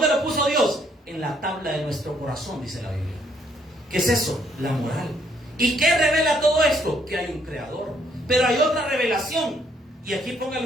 lo puso Dios? En la tabla de nuestro corazón, dice la Biblia. ¿Qué es eso? La moral. ¿Y qué revela todo esto? Que hay un creador. Pero hay otra revelación. Y aquí póngale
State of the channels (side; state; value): both; normal; correlation 0.68